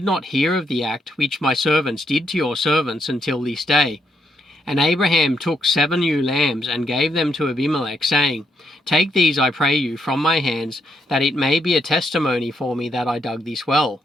not hear of the act which my servants did to your servants until this day." And Abraham took 7 ewe lambs and gave them to Abimelech, saying, "Take these, I pray you, from my hands, that it may be a testimony for me that I dug this well."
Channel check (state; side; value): normal; both; correlation 0.77